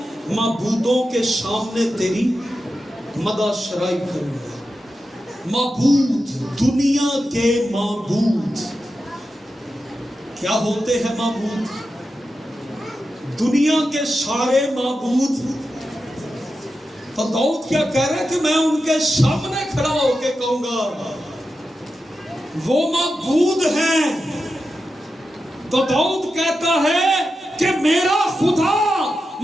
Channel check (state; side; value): normal; both; correlation 0.90